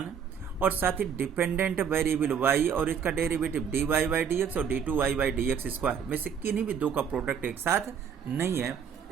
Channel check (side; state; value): left; quieter; 7.4 dB